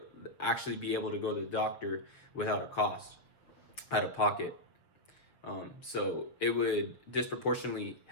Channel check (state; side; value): late; right; 6.8 ms